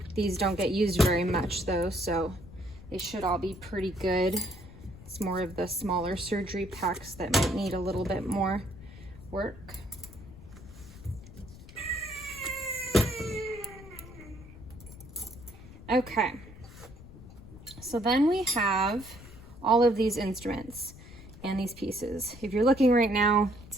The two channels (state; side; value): noise; left; rumble, 17 dB below the sound